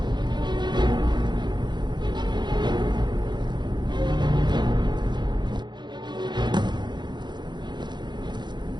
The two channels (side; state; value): left; late; 0.21 ms